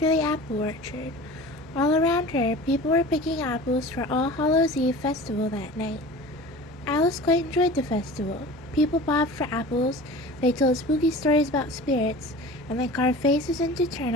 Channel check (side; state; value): both; normal; correlation 0.38